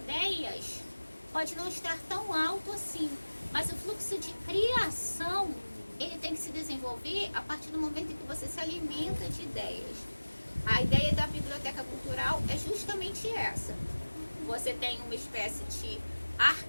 pode não estar tão alto assim, mas o fluxo de criação, ele tem que se desenvolver a partir do momento em que você se alimenta de ideias. A ideia da biblioteca cultural é justamente essa. Você tem uma espécie de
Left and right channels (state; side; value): inverted; both; correlation -1.00